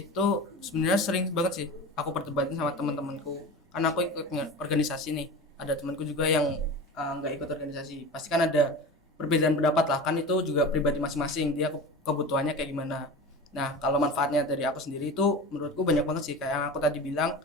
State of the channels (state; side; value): normal; both; correlation 0.32